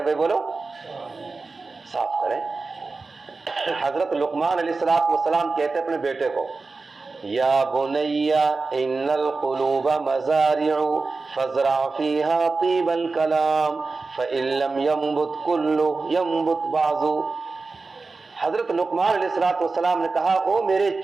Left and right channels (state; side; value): quieter; left; 3.9 dB